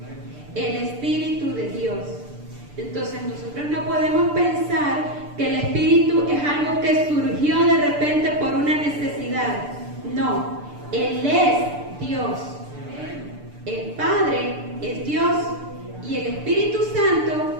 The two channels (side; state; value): left; late; 6.8 ms